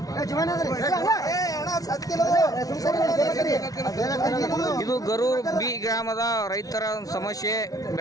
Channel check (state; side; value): late; right; 0.18 ms